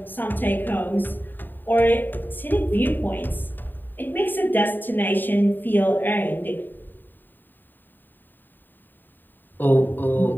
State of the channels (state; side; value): late; right; 0.092 ms